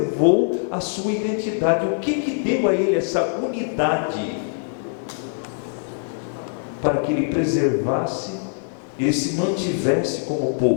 a sua identidade. O que deu a ele essa unidade? Para que ele preservasse e se mantivesse como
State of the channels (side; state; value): right; silent; digital silence